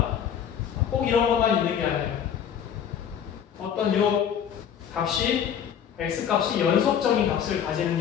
꼭 이런 것만 있는 게 아니에요. 어떤 요 값이 x값이 연속적인 값을 가지는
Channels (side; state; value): right; quieter; 8.6 dB